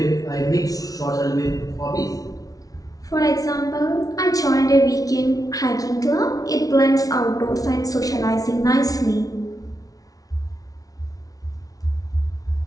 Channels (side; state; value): right; late; 0.18 ms